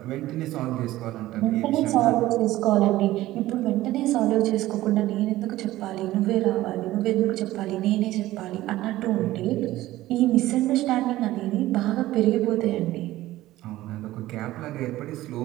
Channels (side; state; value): left; quieter; 16.0 dB